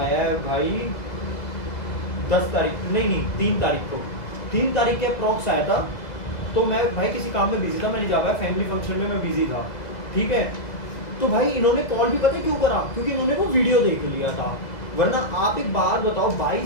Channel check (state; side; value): late; right; 2.0 ms